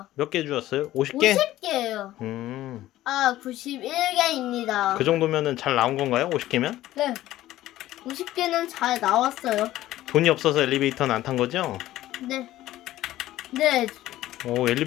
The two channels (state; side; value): quieter; right; 14.9 dB